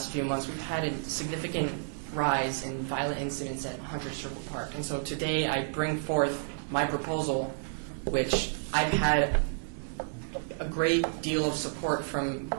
few months, we've had a significant rise in violent incidents at 100 Circle Park. And so today I bring forth my proposal, which I've had a great deal of support from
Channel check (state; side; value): silent; left; digital silence